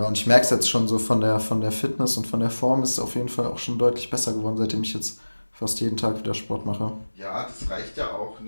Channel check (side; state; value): both; inverted; correlation -1.00